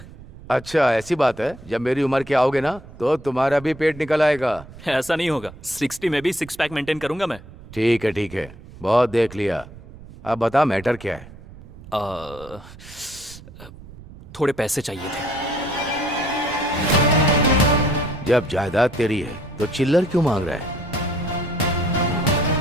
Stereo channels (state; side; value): noise; right; rumble, 18 dB below the sound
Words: अच्छा, ऐसी बात है। जब मेरी उम्र के आओगे ना तो तुम्हारा भी पेट निकल आएगा। ऐसा नहीं होगा। 60 में भी 6 पैक मेंटेन करूंगा मैं। ठीक है ठीक है, बहुत देख लिया। अब बता मैटर क्या है? थोड़े पैसे चाहिए थे। जब जायदाद तेरी है तो चिल्लर क्यों मांग रहा है?